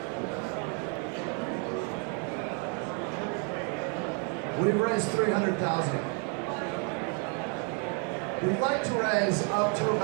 We've raised $300,000. We'd like to raise up to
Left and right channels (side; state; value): left; quieter; 37.1 dB